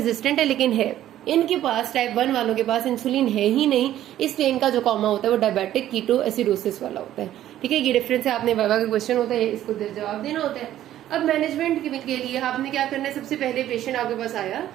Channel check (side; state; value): left; quieter; 12.5 dB